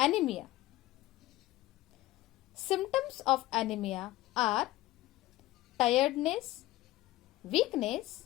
Symptoms of anemia are tiredness,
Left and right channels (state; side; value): quieter; right; 16.9 dB